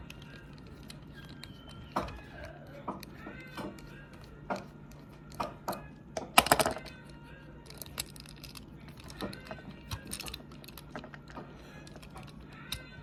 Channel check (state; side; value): identical; both; correlation 1.00